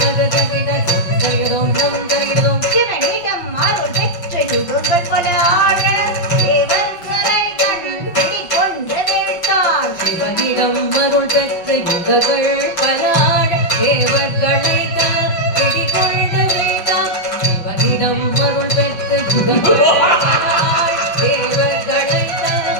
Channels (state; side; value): late; right; 6.2 ms